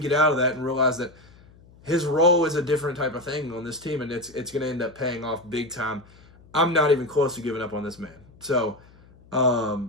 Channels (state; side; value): noise; left; hum, 25 dB below the sound